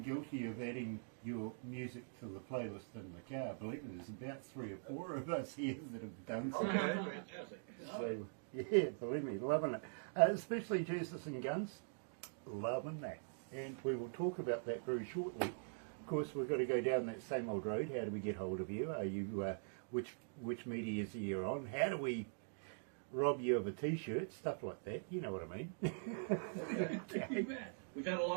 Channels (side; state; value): left; silent; digital silence